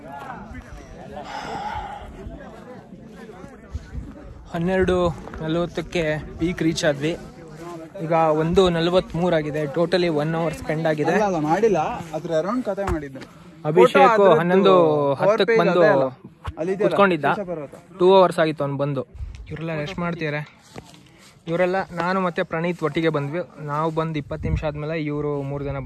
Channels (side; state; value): both; identical; correlation 1.00